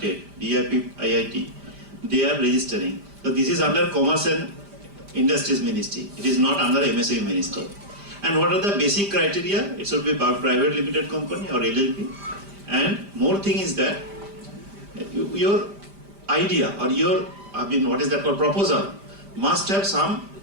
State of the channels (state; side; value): late; left; 5.0 ms